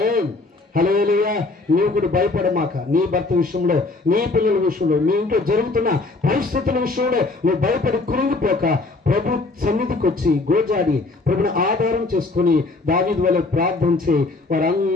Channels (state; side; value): quieter; right; 3.4 dB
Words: హల్లెలూయా. నీవు కూడా భయపడమాక. నీ భర్త విషయంలో, నీ పిల్లల విషయంలో, నీ ఇంట్లో జరుగుతున్న పరిస్థితుల విషయంలో నువ్వు భయపడి కృంగిపోక ప్రభు సన్నిధికి వచ్చి గోజాడి ప్రభుని ఆధారం చేసుకుని దావీదు వలె ప్రార్థించి